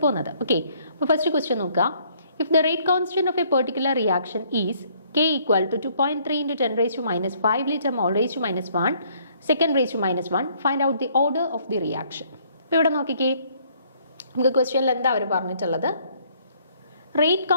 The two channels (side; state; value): both; inverted; correlation -0.64